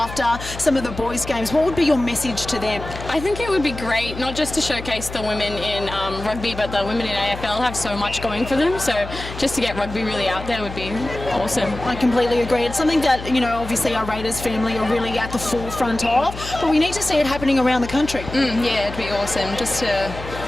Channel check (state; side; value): noise; left; hum, 11 dB below the sound